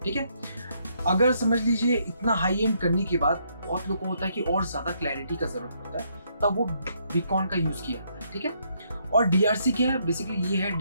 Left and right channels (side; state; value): both; inverted; correlation -0.73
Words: ठीक है। अगर समझ लीजिए इतना हाई एंड करने के बाद बहुत लोगों को होता है कि और ज्यादा क्लैरिटी का जरूरत होता है, तब वो बीकॉन का यूज किया जाता है, ठीक है। और DRC क्या है, बेसिकली ये है